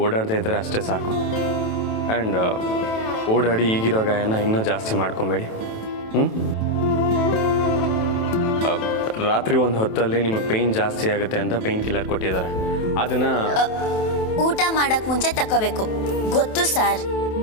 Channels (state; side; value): late; right; 27 ms